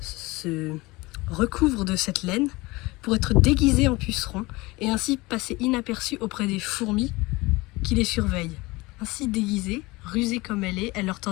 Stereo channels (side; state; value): right; quieter; 22.3 dB